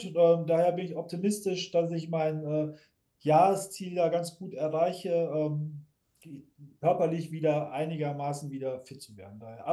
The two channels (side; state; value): both; identical; correlation 1.00